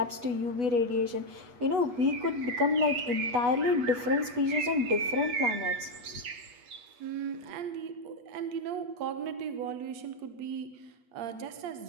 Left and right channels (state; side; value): late; left; 8.2 ms